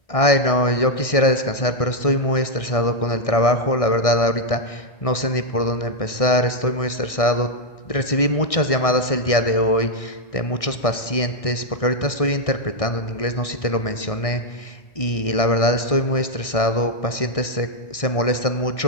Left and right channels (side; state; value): right; late; 1.6 ms